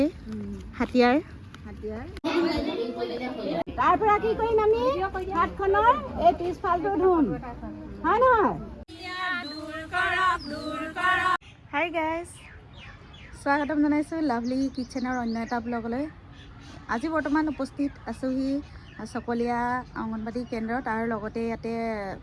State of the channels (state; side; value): identical; both; correlation 1.00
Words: হাতিয়াৰ তাৰ পৰা কি কৰিম আমি হাতখনৰ এই পিছফালটো ধুম হয় নহয় হাই গাইজ স্বাগতম জনাইছোঁ লাভলি কিটচেনৰ অন্য এটা ব্লগলৈ। আজি বৰ্তমান উপস্থিত আছোঁহি চকলীয়া অংগনবাদী কেন্দ্ৰত আৰু লগতে ইয়াতে